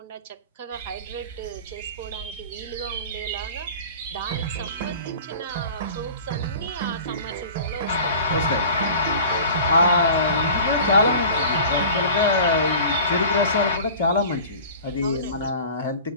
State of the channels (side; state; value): both; inverted; correlation -0.41